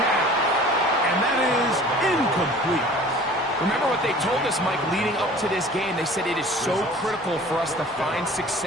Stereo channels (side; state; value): both; normal; correlation 0.46